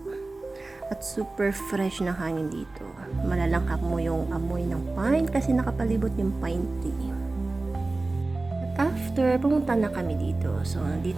At super fresh na hangin dito. Malalangkap mo yung amoy ng pine kasi nakapalibot yung pine tree. At after, pumunta na kami dito. So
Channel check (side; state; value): left; quieter; 3.2 dB